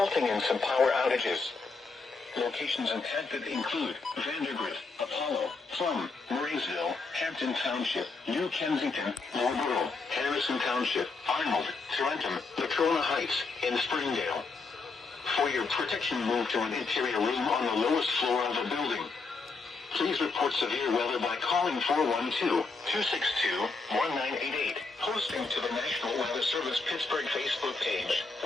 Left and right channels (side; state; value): right; quieter; 4.1 dB